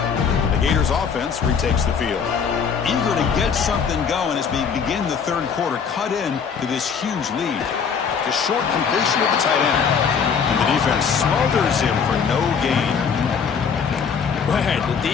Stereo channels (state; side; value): quieter; right; 6.5 dB